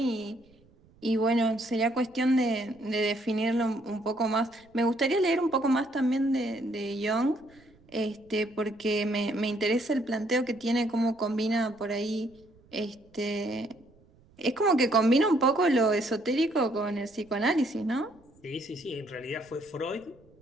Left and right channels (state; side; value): noise; right; rumble, 29 dB below the sound